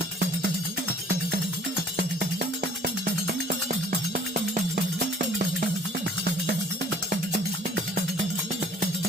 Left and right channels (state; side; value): normal; both; correlation 0.54